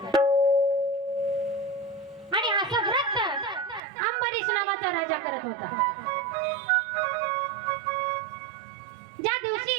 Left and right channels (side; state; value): left; drops out; at 3.8 s